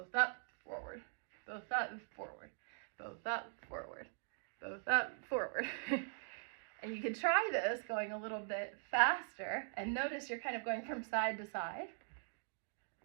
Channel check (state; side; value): silent; left; digital silence